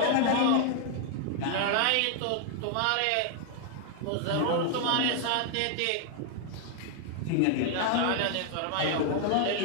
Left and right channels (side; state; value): both; different; correlation 0.00